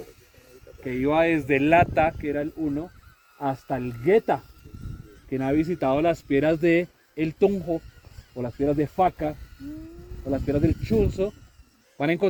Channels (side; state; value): both; identical; correlation 1.00